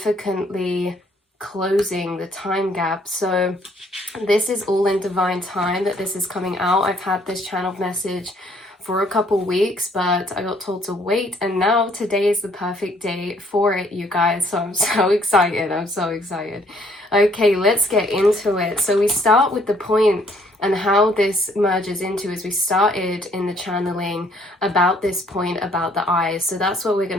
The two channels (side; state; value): both; normal; correlation 0.63